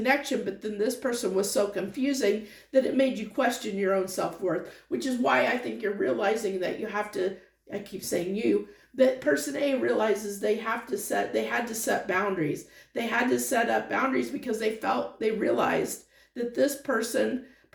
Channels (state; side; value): identical; both; correlation 1.00